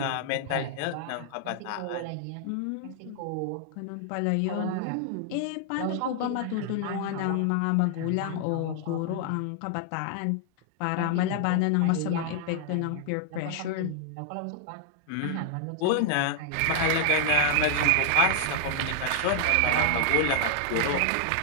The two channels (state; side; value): different; both; correlation 0.00